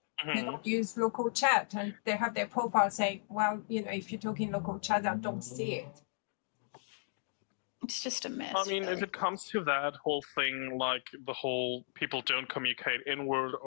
they don't use local chat, and they have their profile saying, well, if you're talking local chat, I don't see it. It's just a mess. I mean, if it comes to that whole thing, like the whole people don't communicate inward,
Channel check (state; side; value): silent; right; digital silence